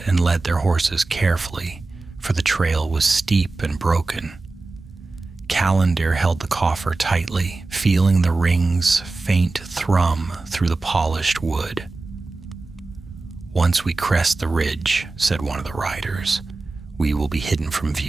and led their horses carefully, for the trail was steep and broken. Callandir held the coffer tightly, feeling the ring's faint thrum through the polished wood. "Once we crest the ridge," said one of the riders, "we will be hidden from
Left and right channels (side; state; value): left; quieter; 3.4 dB